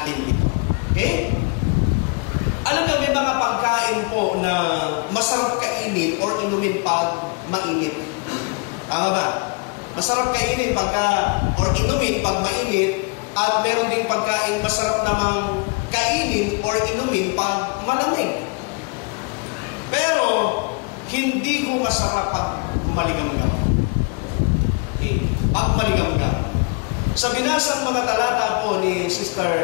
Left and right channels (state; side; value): quieter; right; 32.3 dB